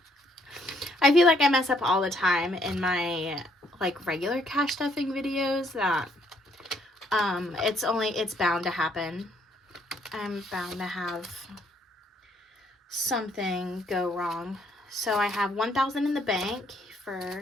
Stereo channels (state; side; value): normal; both; correlation 0.68